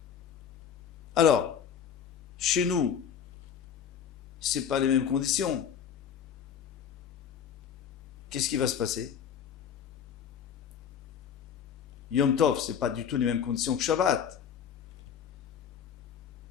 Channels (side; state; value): right; quieter; 8.1 dB